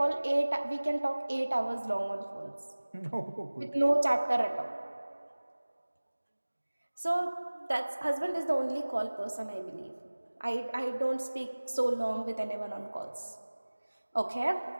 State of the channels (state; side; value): inverted; both; correlation -1.00